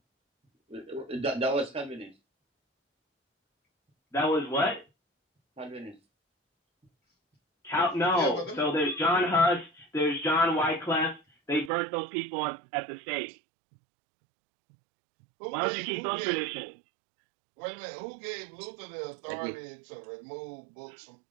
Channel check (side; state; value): left; drops out; at 11.7 s